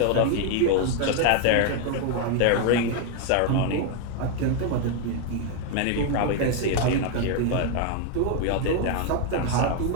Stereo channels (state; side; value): different; both; correlation 0.01